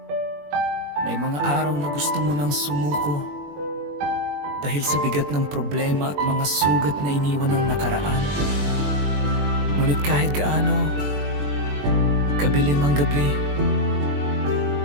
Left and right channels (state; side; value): late; left; 21 ms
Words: May mga araw na gusto mo nang sumuko dahil sa bigat ng problema at mga sugat na iniwan ng nakaraan. Ngunit kahit gaano kabilim ang gabi,